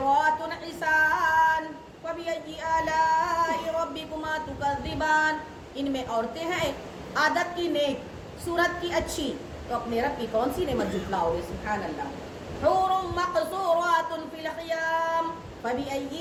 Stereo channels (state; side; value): identical; both; correlation 1.00